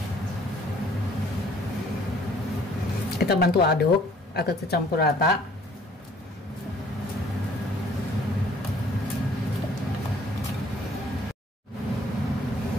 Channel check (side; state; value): both; normal; correlation 0.58